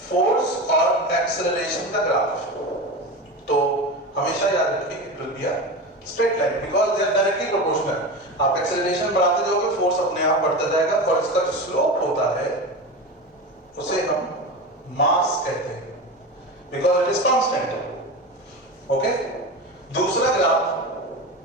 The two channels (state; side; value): normal; both; correlation 0.25